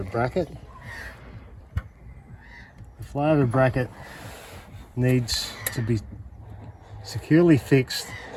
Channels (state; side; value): identical; both; correlation 1.00